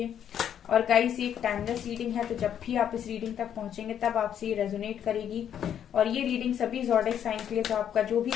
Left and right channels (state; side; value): quieter; right; 9.4 dB